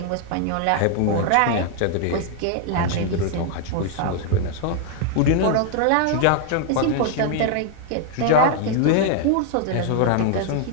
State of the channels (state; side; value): different; both; correlation 0.00